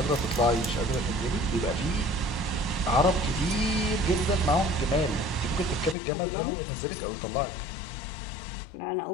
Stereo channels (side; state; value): right; drops out; at 6.0 s